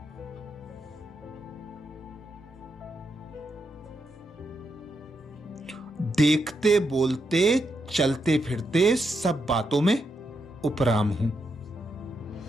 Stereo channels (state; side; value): normal; both; correlation 0.83